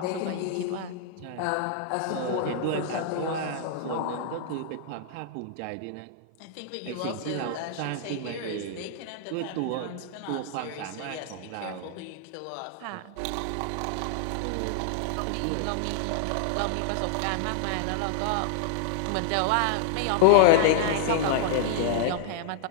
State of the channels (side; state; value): both; different; correlation 0.00